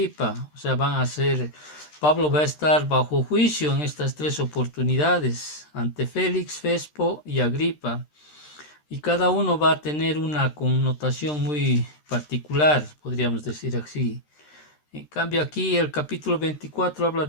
O sea, Pablo va a estar bajo juicio en estas tres oportunidades, ante Félix, Festo y Agripa. Y cada uno va a tener una connotación muy particular, podríamos decir así. En cambio aquí el capítulo 24 habla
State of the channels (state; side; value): late; right; 13 ms